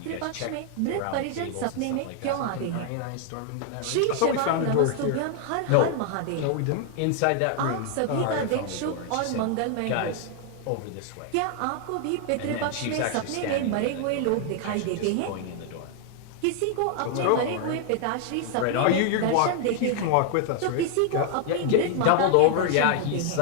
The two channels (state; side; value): different; both; correlation 0.00